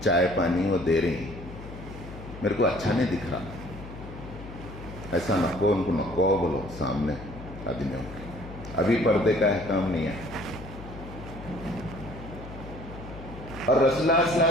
چائے پانی وہ دے رہی ہیں، میرے کو اچھا نہیں دکھ رہا، ایسا نکو ان کو نکو بولو سامنے آدمیوں کے، ابھی پردے کا احکام نہیں ہے۔ اور رسول اللہ صلی اللہ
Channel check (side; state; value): left; noise; hum, 13 dB below the sound